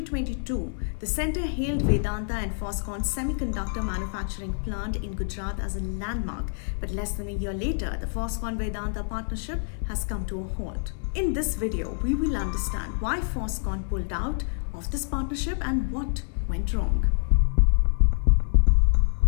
the center hailed Vedanta and Foxconn's semiconductor manufacturing plant in Gujarat as a landmark, but less than a year later, the Foxconn-Vedanta partnership has come to a halt. In this video, we will understand why Foxconn pulled out of this partnership and what went wrong.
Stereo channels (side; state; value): right; silent; digital silence